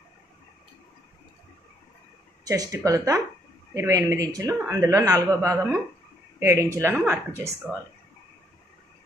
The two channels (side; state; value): both; normal; correlation 0.70